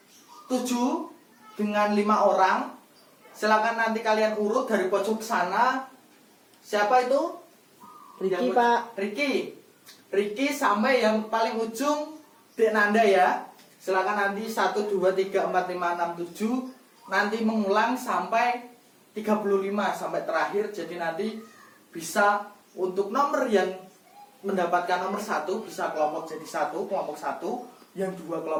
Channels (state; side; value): identical; both; correlation 1.00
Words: 7 dengan 5 orang. Silakan nanti kalian urut dari pojok sana. Siapa itu? Ricky, Pak. Ricky sampai yang paling ujung Dek Nanda ya. Silakan nanti 1, 2, 3, 4, 5, 6, 7. Nanti mengulang sampai 35 sampai terakhir. Jadi nanti bisa untuk nomor yang mendapatkan nomor 1 bisa kelompok jadi 1, kelompok 1, yang 2